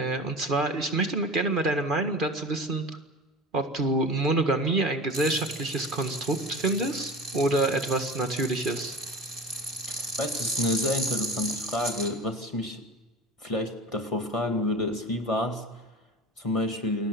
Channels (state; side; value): normal; both; correlation 0.34